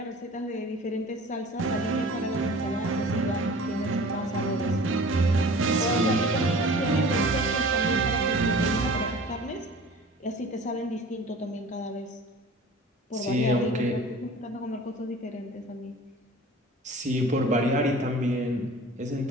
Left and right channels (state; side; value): normal; both; correlation 0.43